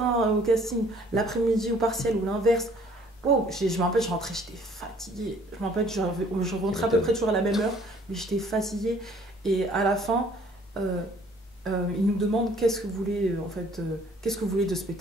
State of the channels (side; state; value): both; normal; correlation 0.58